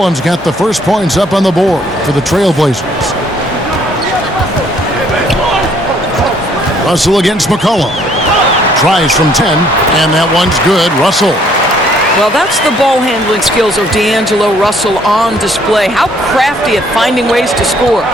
got the first points up on the board for the Trailblazers. Russell against McCollum. Tries from 10, and that one's good. Russell. Well, that's the ball handling skills of D'Angelo Russell on display. How crafty at finding ways to score.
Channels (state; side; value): normal; both; correlation 0.63